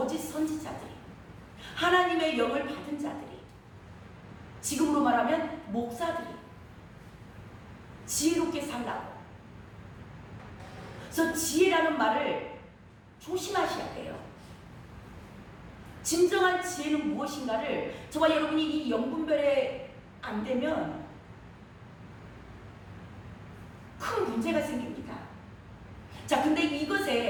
선지자들이, 하나님의 영을 받은 자들이, 지금으로 말하면 목사들이 지혜롭게 살라고. 그래서 지혜라는 말을 조심하셔야 돼요. 진정한 지혜는 무엇인가를 저와 여러분이 이 영분별에 안 되면 큰 문제가 생깁니다. 자, 근데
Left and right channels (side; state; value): both; identical; correlation 1.00